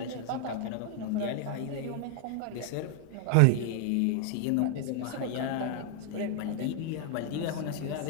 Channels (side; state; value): both; different; correlation 0.00